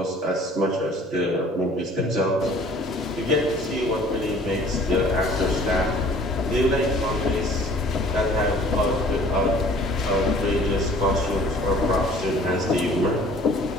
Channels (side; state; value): both; normal; correlation 0.52